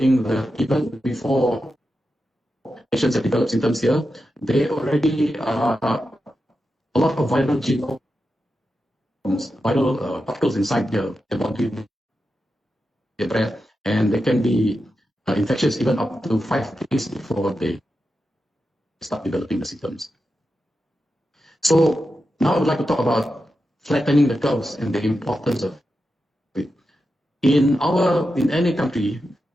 that even before patients have developed symptoms here, they already are a lot of viral genomes, viral particles inside their body, their breath, and they can be infectious even up to 5 days before they start developing the symptoms. So now I would like to talk about flattening the curves and the importance of it. In any country,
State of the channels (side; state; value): both; normal; correlation 0.89